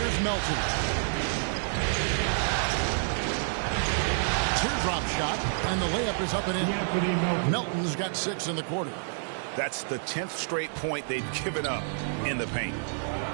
Melton. Teardrop shot, and the layup is up and in. Melton's got 6 in the quarter. That's the 10th straight point they've given up in the paint.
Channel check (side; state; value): left; silent; digital silence